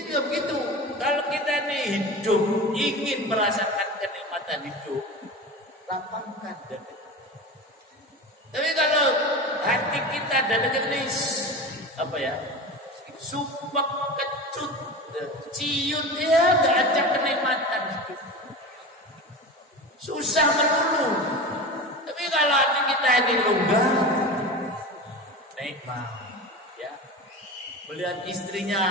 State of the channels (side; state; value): both; normal; correlation 0.29